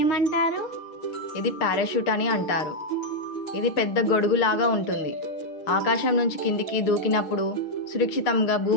ఏమంటారు? ఇది పారాషూట్ అని అంటారు. ఇది పెద్ద గొడుగులాగా ఉంటుంది. ఆకాశం నుంచి కిందికి దూకినప్పుడు సురక్షితంగా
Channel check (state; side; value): late; right; 6.5 ms